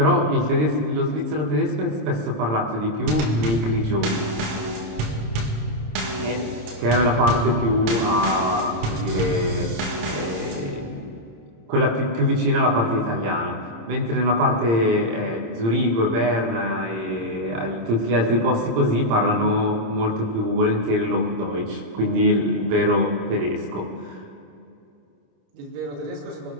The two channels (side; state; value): left; late; 26 ms